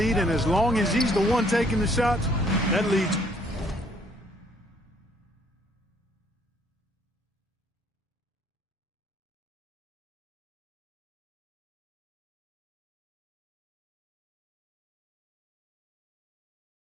and as long as he's the one taking the shots, that lead's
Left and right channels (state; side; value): normal; both; correlation 0.64